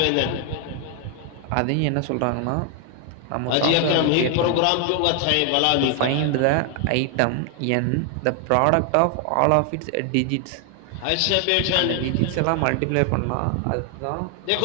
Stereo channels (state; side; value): different; both; correlation 0.00